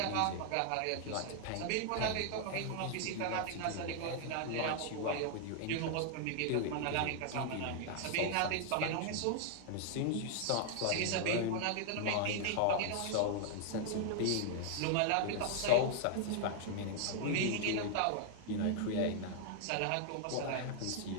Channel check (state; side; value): different; both; correlation 0.00